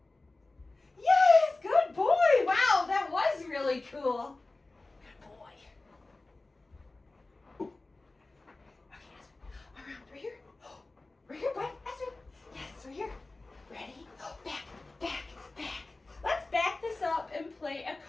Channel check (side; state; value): right; quieter; 3.2 dB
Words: Yes, good boy. Wow, that was really cool. Good boy. Right here. Right here, bud. Aspen. Yes, right here. Ready? Back. Let's back this up and play a